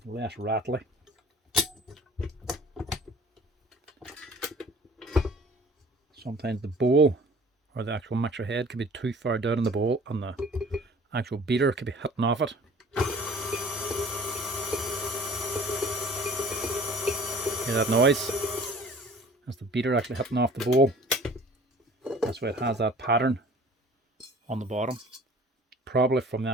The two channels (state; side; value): normal; both; correlation 0.48